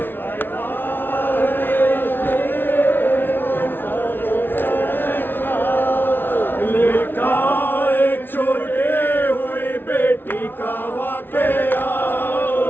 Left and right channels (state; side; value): late; right; 0.10 ms